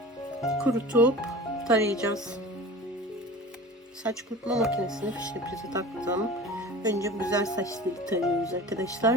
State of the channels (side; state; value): both; normal; correlation 0.38